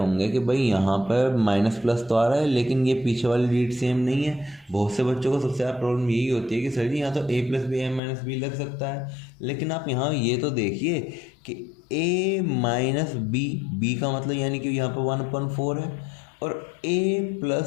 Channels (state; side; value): drops out; right; at 8.0 s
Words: कि भाई यहाँ पर माइनस प्लस तो आ रहा है, लेकिन ये पीछे वाली रीड सेम नहीं है। बहुत से बच्चों को सबसे ज़्यादा प्रॉब्लम यही होती है कि सर जी यहाँ तो a + b a - b लग सकता है, लेकिन आप यहाँ ये तो देखिए कि a - b का मतलब यानी कि यहाँ पर 1/4 है, और a